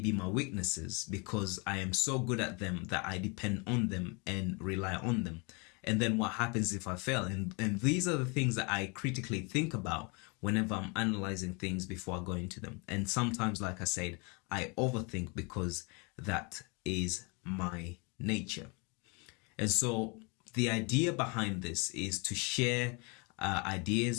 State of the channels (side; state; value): right; quieter; 31.3 dB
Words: my weaknesses, because I am so good at them that I depend on them and rely on them. And then what happens if I fail? And these are the things that I critically think about whenever I'm analyzing things before I go into them. And sometimes, like I said, I overthink, because that is my nature. And so the idea behind this is to share